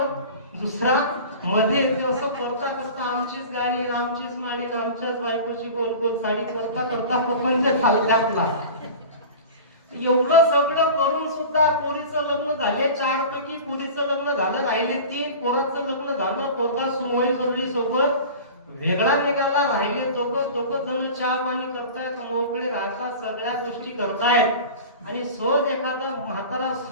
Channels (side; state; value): both; inverted; correlation -0.36